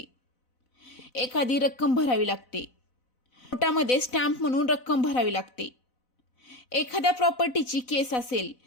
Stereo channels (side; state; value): right; late; 4.0 ms